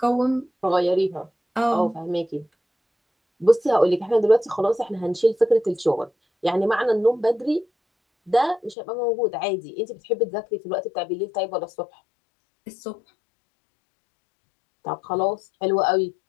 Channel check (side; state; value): right; drops out; at 8.8 s